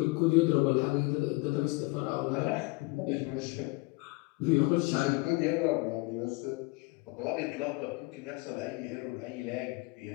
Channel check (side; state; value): right; quieter; 25.7 dB